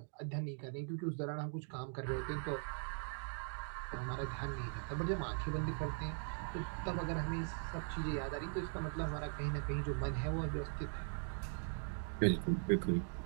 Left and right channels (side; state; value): left; silent; 50 dB below the other